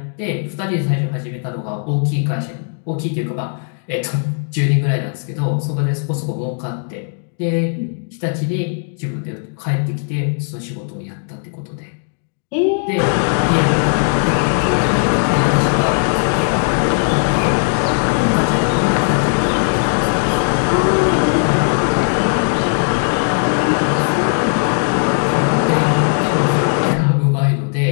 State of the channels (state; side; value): silent; right; 67 dB below the other